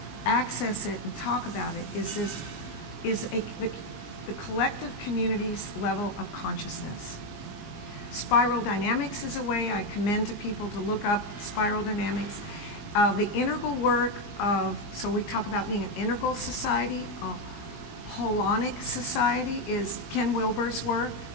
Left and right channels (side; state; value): right; late; 20 ms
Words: access it and talk about it, is the collective community's level of consciousness. Spiral dynamics is a way I commend to people to look up spiral dynamics. The integral work so we talk about being an integral society, a holonic society is Ken Wilber's work.